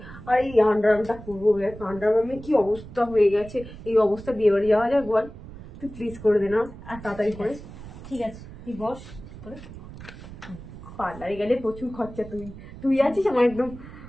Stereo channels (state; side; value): noise; right; rumble, 15 dB below the sound